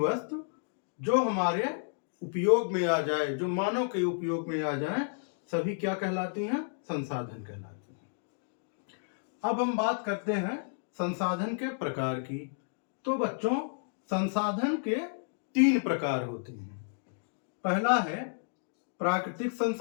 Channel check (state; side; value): silent; right; digital silence